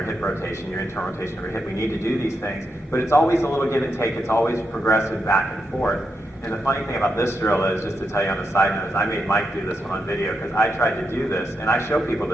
hip rotation, your internal rotation of your hip. We need to do these things. But it's always a little give and take. It's always progressive back and forth. And the funny thing about this drill is, just to tell you on a side note, is I made Mike do this one on video because I tried to do this, and I show people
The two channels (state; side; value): normal; both; correlation 0.84